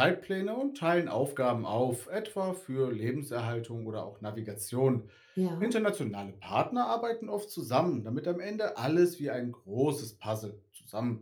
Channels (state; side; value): identical; both; correlation 1.00